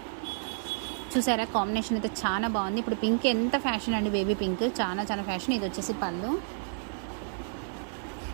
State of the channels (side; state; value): left; silent; digital silence